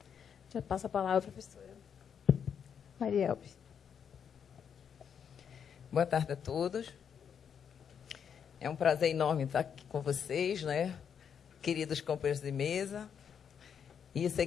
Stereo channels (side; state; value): right; quieter; 7.6 dB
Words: Já passo a palavra, professora Marielbe. Boa tarde a todos. É um prazer enorme estar aqui com vocês, né? Queridos companheiros de mesa. E eu sei